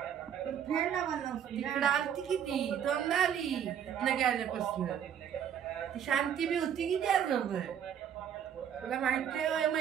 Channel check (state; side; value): quieter; left; 9.1 dB